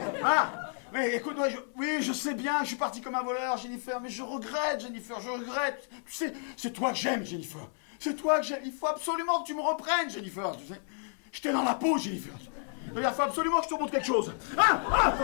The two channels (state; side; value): silent; right; 55 dB below the other